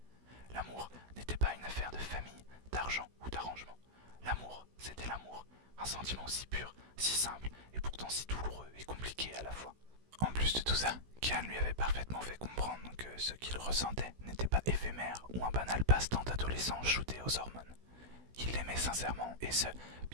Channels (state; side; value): late; left; 16 ms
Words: L'amour n'était pas une affaire de famille, d'argent ou d'arrangement. L'amour, c'était l'amour, un sentiment si pur, si simple, et pourtant si douloureux et compliqué à la fois. En plus de tout ça, Kian lui avait parfaitement fait comprendre que ce qu'il ressentait n'était pas éphémère ou un banal passe-temps d'adolescent shooté aux hormones. Il l'aimait sincèrement, et ce,